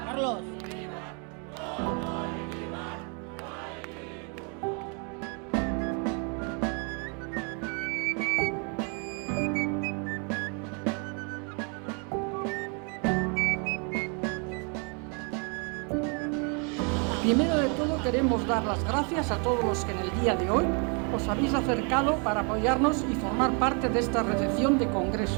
Carlos. Primero de todo queremos dar las gracias a todos los que en el día de hoy os habéis acercado para apoyarnos y formar parte de esta recepción de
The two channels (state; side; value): quieter; left; 36.6 dB